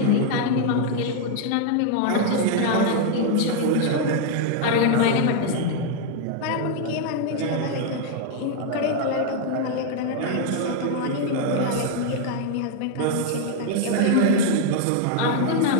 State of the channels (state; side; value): different; both; correlation 0.00